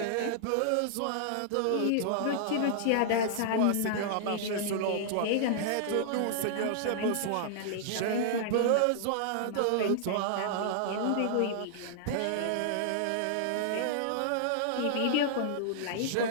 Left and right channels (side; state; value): both; different; correlation -0.01